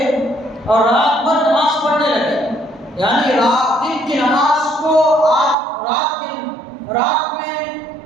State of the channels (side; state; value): left; drops out; at 5.6 s